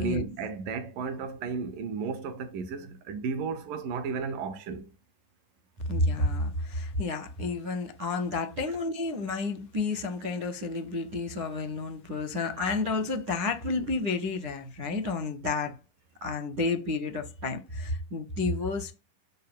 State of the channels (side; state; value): left; late; 11 ms